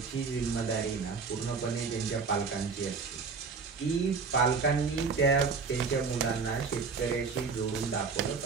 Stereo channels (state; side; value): quieter; left; 4.9 dB